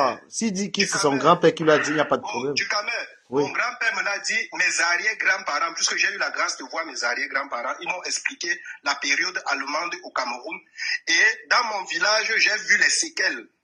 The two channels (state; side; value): identical; both; correlation 1.00